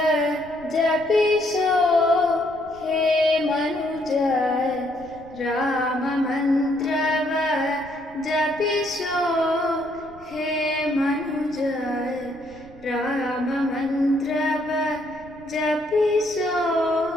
ಜಪಿಸೋ ಹೇ ಮನುಜ, ರಾಮ ಮಂತ್ರವ ಜಪಿಸೋ ಹೇ ಮನುಜ, ರಾಮ ಮಂತ್ರವ ಜಪಿಸೋ.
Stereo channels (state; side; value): noise; right; rumble, 22 dB below the sound